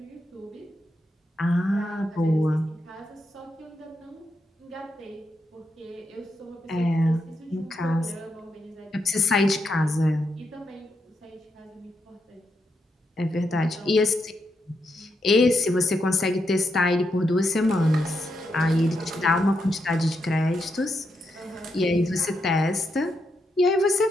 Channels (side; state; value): both; normal; correlation 0.82